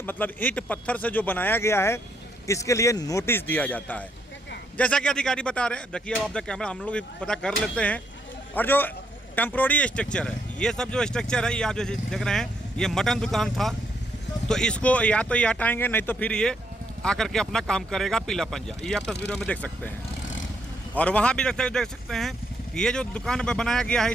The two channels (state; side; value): normal; both; correlation 0.74